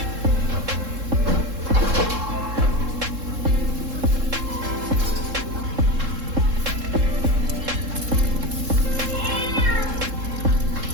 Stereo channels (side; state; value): left; late; 3.7 ms